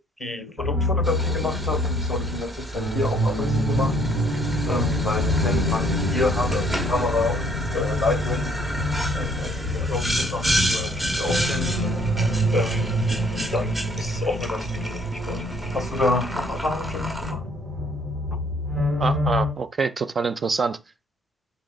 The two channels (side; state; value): both; normal; correlation 0.63